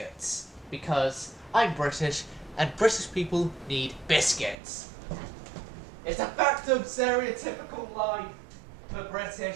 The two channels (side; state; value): left; drops out; at 4.5 s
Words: Because I'm British, and British people need biscuits. It's a fact of stereotypical life for British